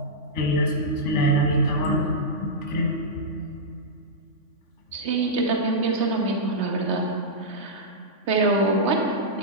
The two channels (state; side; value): late; left; 3.5 ms